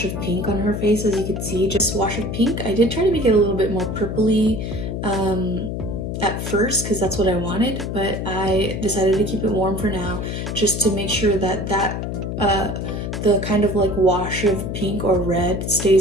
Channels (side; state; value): left; noise; hum, 4 dB below the sound